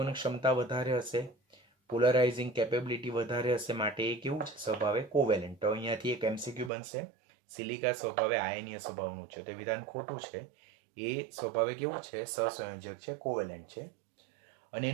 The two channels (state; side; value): drops out; left; at 6.7 s